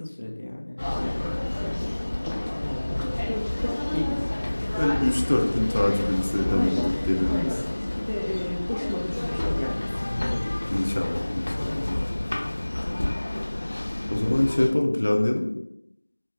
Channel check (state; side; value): inverted; both; correlation -1.00